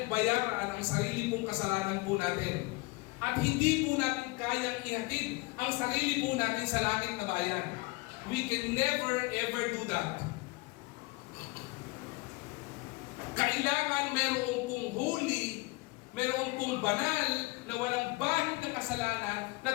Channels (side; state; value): right; quieter; 24.2 dB